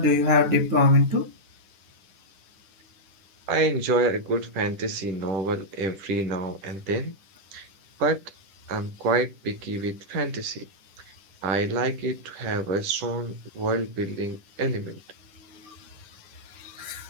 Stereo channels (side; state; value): left; late; 10 ms